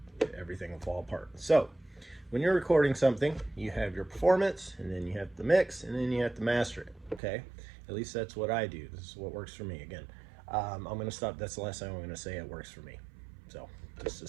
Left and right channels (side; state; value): left; drops out; at 7.2 s